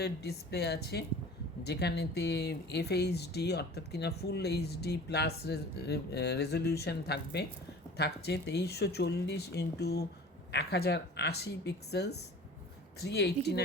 ডিসপ্লে আছে, যেখানেতে FHD অর্থাৎ কিনা ফুল এইচডি প্লাস রেজলিউশন থাকছে 2340x1080 পিক্সেলস,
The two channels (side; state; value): both; normal; correlation 0.42